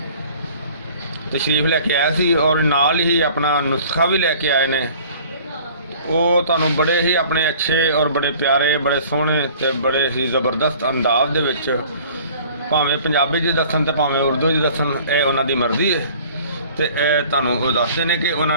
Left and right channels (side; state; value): both; inverted; correlation -0.50